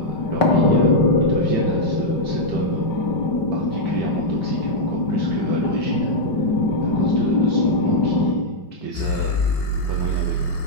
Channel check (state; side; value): late; right; 5.2 ms